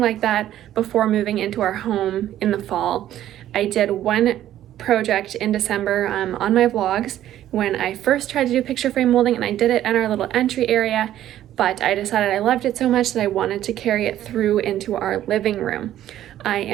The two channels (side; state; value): left; quieter; 12.3 dB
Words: that before moving into our home in the fall. I did one project in December on my vlogs when I first tried to do picture frame molding, and I did it in our little entry area, but I decided I loved it so much that I wanted to carry it through into our living room. I